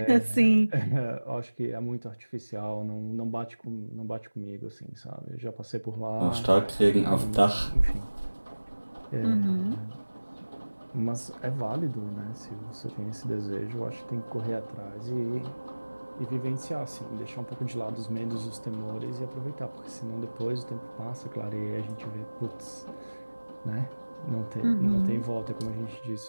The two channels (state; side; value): inverted; both; correlation -1.00